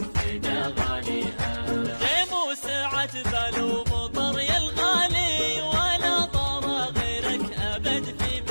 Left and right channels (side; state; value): both; inverted; correlation -1.00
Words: فدا غاليها. غيم وسعت بال ومطر يا الغالي، ولا طار غيرك أبد في